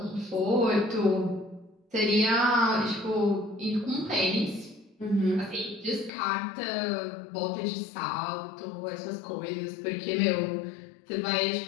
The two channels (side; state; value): right; drops out; at 6.1 s